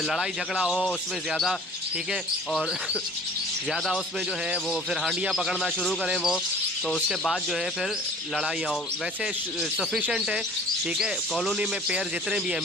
लड़ाई झगड़ा हो उसमें ज़्यादा, ठीक है। और ज़्यादा उसमें जो है वो फिर हांडियाँ पकड़ना शुरू करें वो, तो उसके बाद जो है फिर लड़ाइयाँ हो। वैसे सफिशेंट है, ठीक है, कॉलोनी में पेयर जितने भी हैं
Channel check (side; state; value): both; normal; correlation 0.48